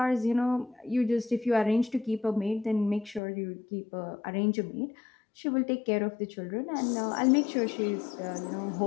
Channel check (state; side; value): drops out; right; at 3.2 s